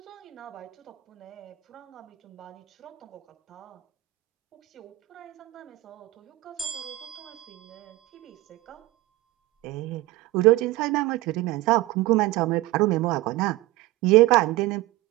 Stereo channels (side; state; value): left; quieter; 18.3 dB